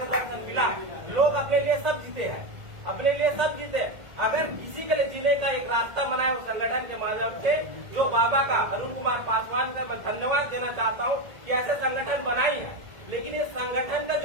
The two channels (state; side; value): late; left; 1.8 ms